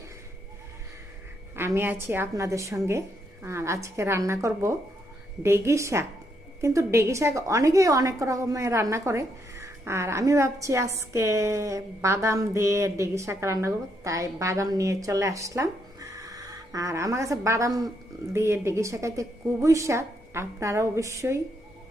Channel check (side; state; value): both; normal; correlation 0.77